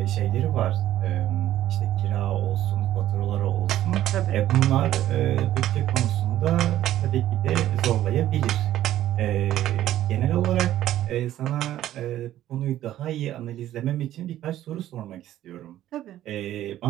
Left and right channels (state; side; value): quieter; left; 13.0 dB